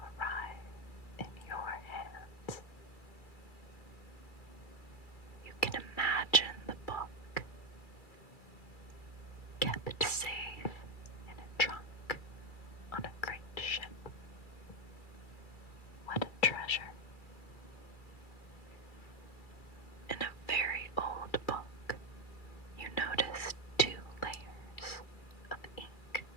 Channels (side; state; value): right; late; 2.3 ms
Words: in your hands. You can imagine the book kept safe in a trunk on a great ship. What a treasure. In a very old book, you notice 2 layers of ink